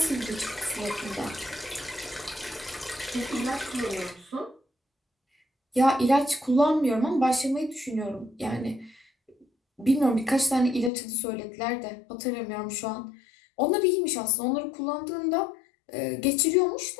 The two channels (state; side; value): drops out; right; at 10.9 s